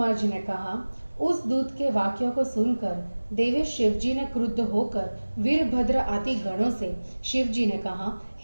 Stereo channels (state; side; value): inverted; both; correlation -1.00